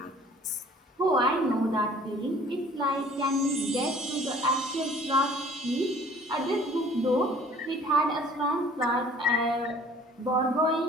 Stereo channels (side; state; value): both; normal; correlation 0.53